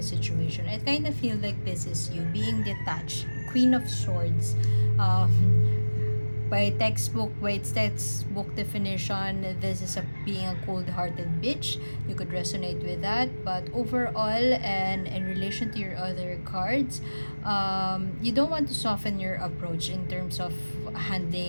situation. I kind of feel like this is you being detached. Queen of Swords. By its textbook definition, this is being a cold-hearted bitch. You could resonate with that, but overall, and in relation to your other cards, you don't want to soften your approach in terms of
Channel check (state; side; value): inverted; both; correlation -1.00